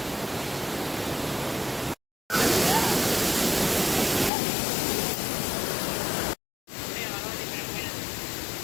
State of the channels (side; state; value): right; drops out; at 4.3 s